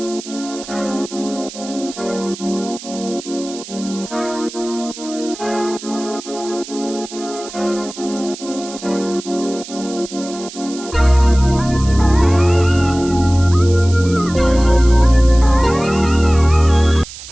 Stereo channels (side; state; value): right; noise; hiss, 14 dB below the sound